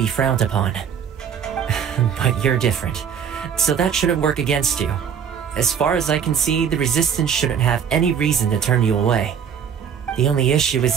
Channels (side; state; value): left; quieter; 7.8 dB